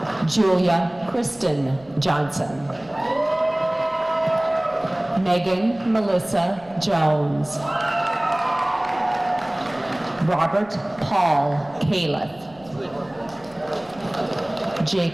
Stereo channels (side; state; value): right; noise; rumble, 26 dB below the sound